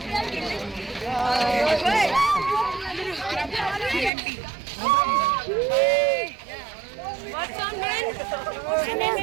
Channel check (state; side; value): drops out; left; at 4.1 s